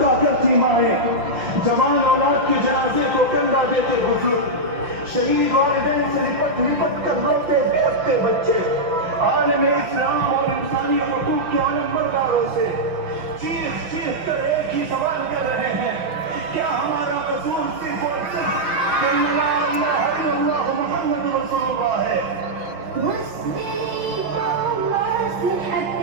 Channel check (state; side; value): late; left; 5.8 ms